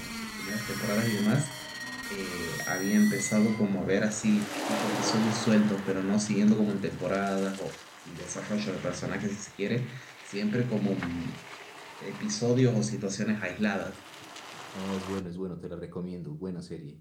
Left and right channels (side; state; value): both; identical; correlation 1.00